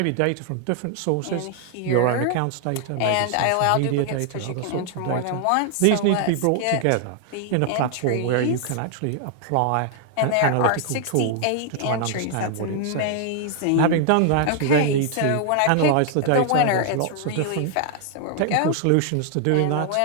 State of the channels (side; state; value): both; different; correlation 0.00